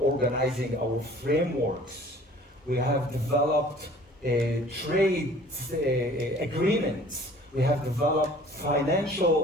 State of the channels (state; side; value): normal; both; correlation 0.51